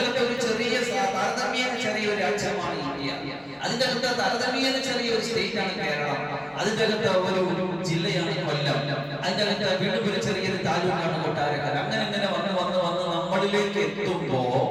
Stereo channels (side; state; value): both; identical; correlation 1.00